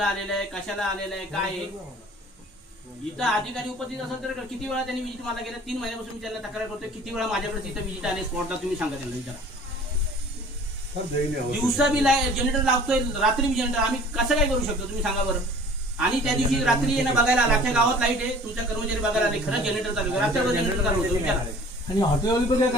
आलेला आहे, कशाला आलेला आहे, काय आहे। इथं अधिकारी उपस्थित असेल तर किती वेळा त्यांनी विजिट मला गेल्या 3 महिन्यापासून मी त्यांना तक्रार करतोय, किती वेळा माझ्याकडे तिथं विजिट आले स्पॉटला, तुम्ही सांगा त्यांना, विचारा। दिवसा बी जनरेटर लावतोय, रात्री बी जनरेटर, आम्ही कसं काय करू शकतो तुम्ही सांगा बरं। आणि त्या दिवशी रात्री येणं बघायला आला, अख्ख्या गावात लाईट आहे, तुमच्या कर्मचारी बघायला आले, खरं जनरेटर चालू आहे, रात्रभर जनरेटर चालू होतं, विचारा। आणि हॉटेलवाली पण काय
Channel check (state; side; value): normal; both; correlation 0.48